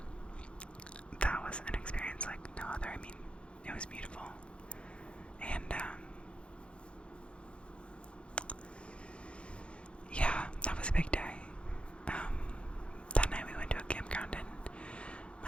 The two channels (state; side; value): late; right; 0.058 ms